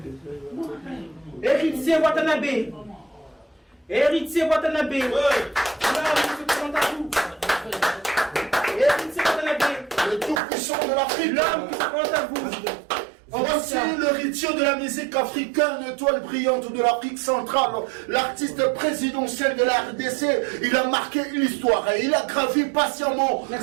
Héritier Watanabe. Héritier Watanabe. Héritier Watanabe. Le tout-puissant de l'Afrique. L'homme qui se présente à vous. Voici l'héritier de la musique africaine, l'étoile brillante de l'Afrique centrale, l'artiste présidentiel de la RDC. Il a marqué l'histoire et il a gravi patiemment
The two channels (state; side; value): drops out; left; at 10.4 s